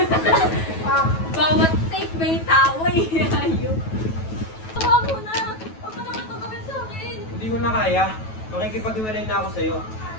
Bawat take may tawa eh. Ayun. Hawa mo na. Huwag mo naman ito gawin sa akin. Hindi ko na kaya. Makikipag-iwalay na ako sa'yo.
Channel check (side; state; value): right; late; 9.2 ms